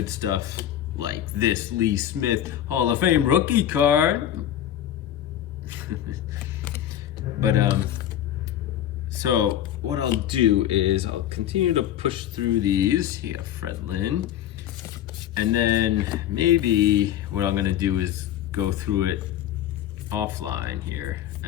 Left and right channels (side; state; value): right; quieter; 11.1 dB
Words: stuff like this Lee Smith Hall of Fame rookie card. But so what I'll do is I'll continue to push through these. You got Fred Lynn. And then maybe what I'm gonna do is go through it offline here